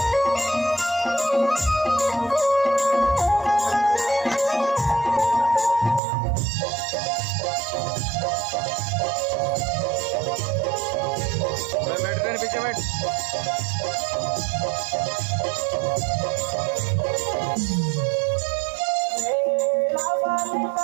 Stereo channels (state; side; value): drops out; left; at 6.0 s